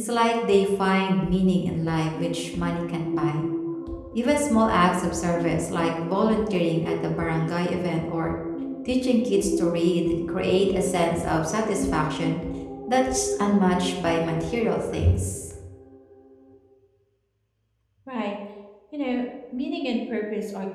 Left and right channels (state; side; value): identical; both; correlation 1.00